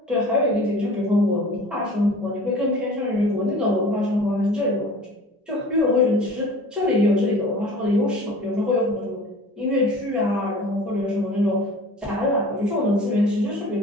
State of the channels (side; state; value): both; normal; correlation 0.42